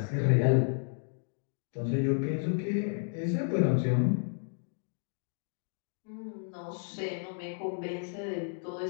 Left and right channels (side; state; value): right; silent; digital silence